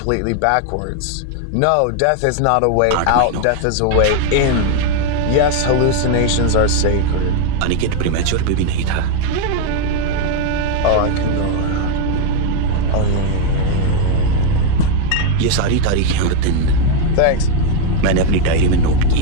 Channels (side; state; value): both; different; correlation 0.01